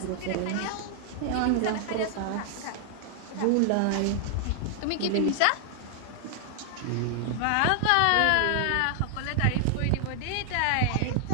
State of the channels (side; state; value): both; different; correlation 0.00